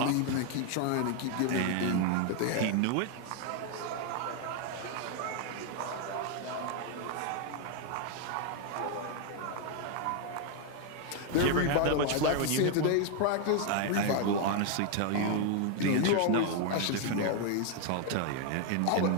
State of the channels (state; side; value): different; both; correlation 0.00